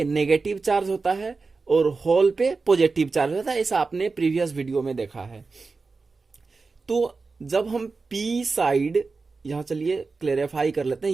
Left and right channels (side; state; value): left; quieter; 4.2 dB